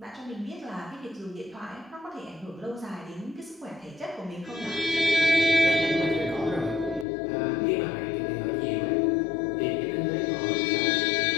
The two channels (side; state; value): right; drops out; at 7.1 s